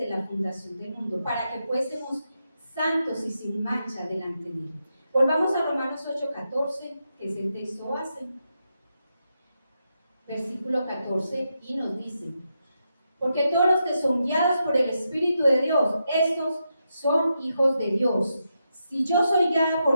la fundación del mundo para que fuésemos santos y sin mancha delante de Él. Volvamos a Romanos 8:14, que es el texto base. Versículo 14, y nos dice, porque todos los que son guiados por el Espíritu de Dios, estos son hijos de Dios. Si yo soy guiada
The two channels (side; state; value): both; inverted; correlation -0.85